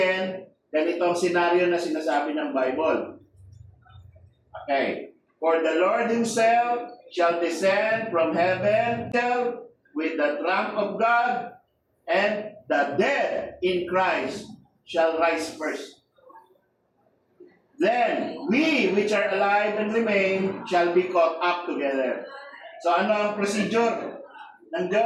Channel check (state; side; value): identical; both; correlation 1.00